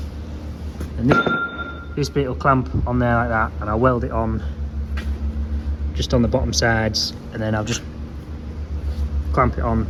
And this bit will clamp on there like that, and I'll weld it on just on the bottom sides, and then I'll just clamp it on,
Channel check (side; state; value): both; identical; correlation 1.00